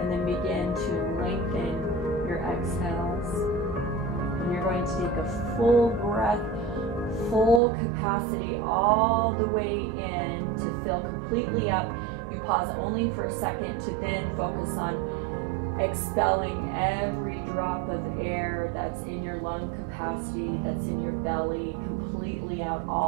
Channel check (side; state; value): left; drops out; at 7.6 s